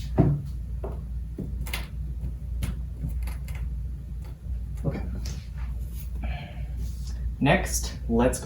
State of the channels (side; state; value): both; identical; correlation 1.00